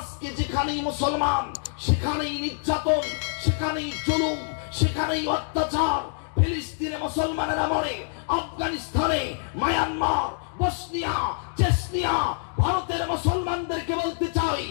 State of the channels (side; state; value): right; silent; digital silence